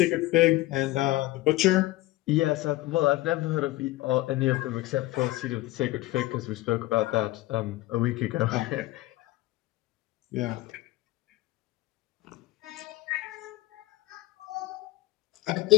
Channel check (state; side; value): quieter; right; 17.9 dB